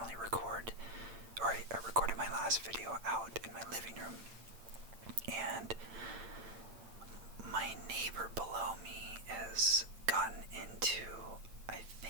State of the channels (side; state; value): left; late; 8.9 ms